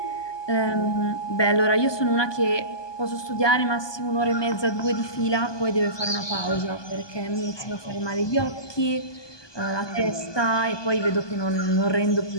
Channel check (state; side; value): late; right; 1.2 ms